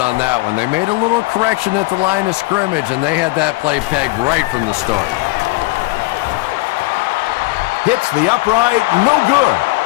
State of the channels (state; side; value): quieter; right; 21.6 dB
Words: on that one. They made a little correction at the line of scrimmage, and they had that play pegged right from the start. Hits the upright, no good.